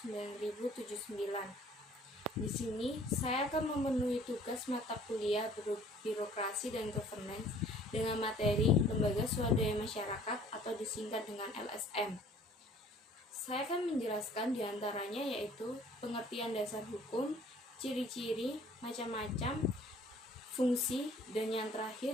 Di sini saya akan memenuhi tugas mata kuliah birokrasi dan governance dengan materi Lembaga Swadaya Masyarakat atau disingkat dengan LSM. Saya akan menjelaskan diantaranya yaitu pengertian dasar hukum, ciri-ciri, macam-macam, fungsi, dan yang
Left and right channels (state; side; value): normal; both; correlation 0.54